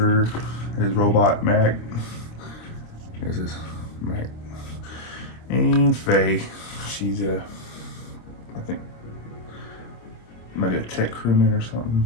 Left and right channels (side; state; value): right; late; 26 ms